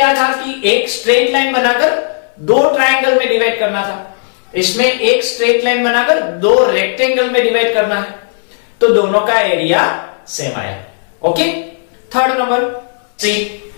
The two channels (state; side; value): silent; right; digital silence